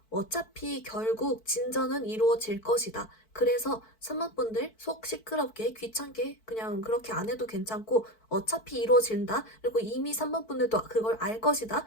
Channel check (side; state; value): right; late; 4.5 ms